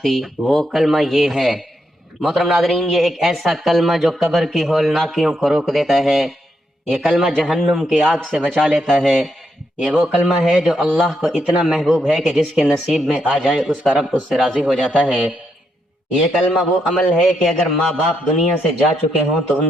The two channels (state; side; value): normal; both; correlation 0.80